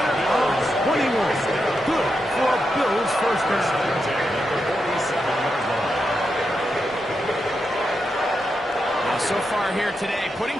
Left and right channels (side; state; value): both; normal; correlation 0.86